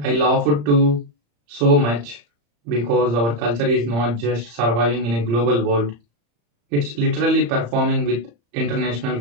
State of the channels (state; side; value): late; left; 35 ms